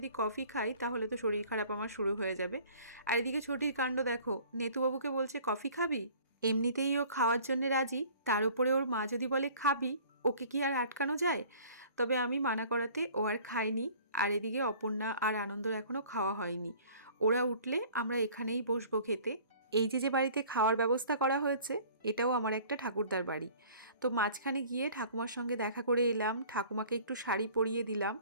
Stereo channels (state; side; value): inverted; both; correlation -0.50